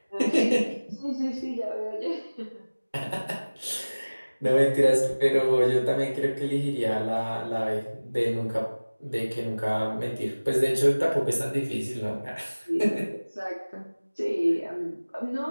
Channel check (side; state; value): both; inverted; correlation -1.00